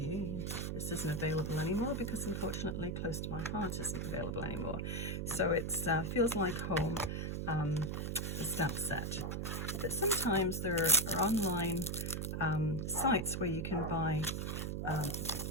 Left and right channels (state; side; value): noise; right; hum, 2 dB below the sound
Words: this isn't available anymore because unfortunately Close to My Heart isn't available anymore. So it's Feels Like Home, the stamp set. But sometimes there are online sites where you can buy